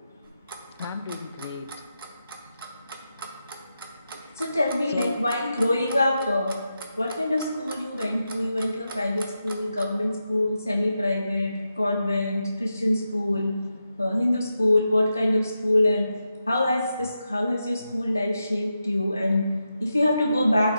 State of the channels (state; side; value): inverted; both; correlation -0.88